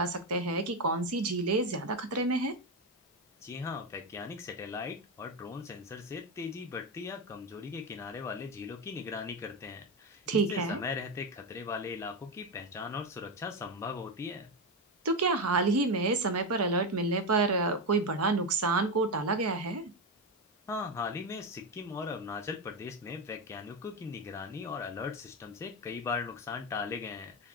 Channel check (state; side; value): normal; both; correlation 0.12